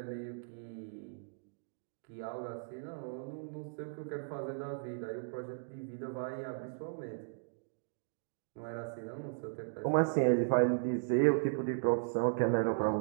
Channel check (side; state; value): left; silent; digital silence